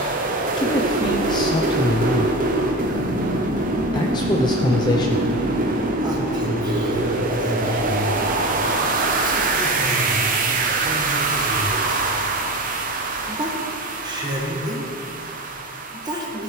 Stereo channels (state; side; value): normal; both; correlation 0.30